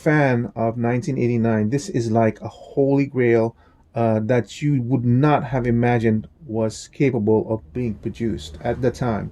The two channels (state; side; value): identical; both; correlation 1.00